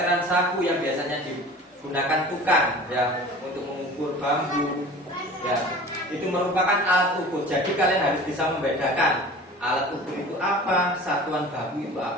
saku yang biasanya digunakan tukang ya untuk mengukur bambu. Ya, itu merupakan alat ukur. Jadi kalian harus bisa membedakan alat ukur itu apa, satuan baku itu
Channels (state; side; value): normal; both; correlation 0.41